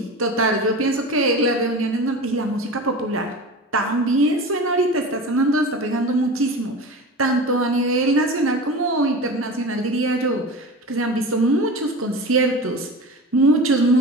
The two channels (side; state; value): both; normal; correlation 0.31